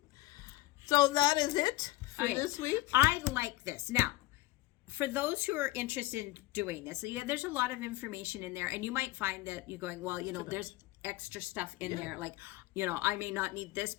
So that is it for this week. I like this. Now, for those who are interested in doing this, there's a lot of information in there, and you might find that you're going, well, there's extra stuff in there, like, I may not need this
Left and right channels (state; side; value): quieter; right; 19.7 dB